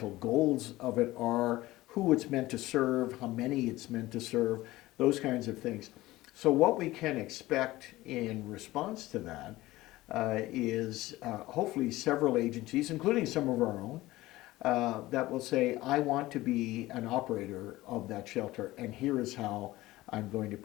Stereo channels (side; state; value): right; quieter; 17.8 dB